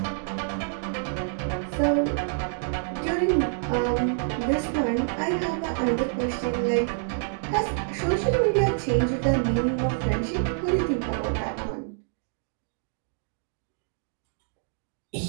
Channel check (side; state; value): left; silent; digital silence